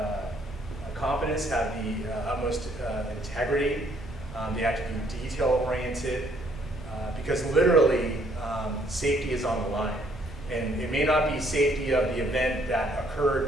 competence, have the utmost integrity. They have to be detail-oriented because literally safety is on the line. And it may not be safety of the event that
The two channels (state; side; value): normal; both; correlation 0.66